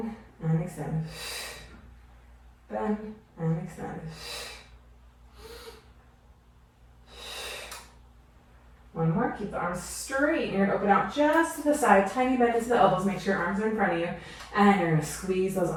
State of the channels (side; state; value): both; identical; correlation 1.00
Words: and extend. Bend and extend. 1 more. Keep the arms straight. You're going to open out just to the side. Tiny bend into the elbows. Make sure your arms are in front of you. And you're going to squeeze those